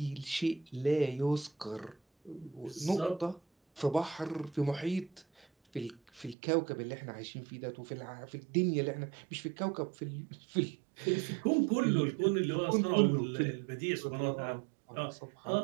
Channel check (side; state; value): left; drops out; at 6.4 s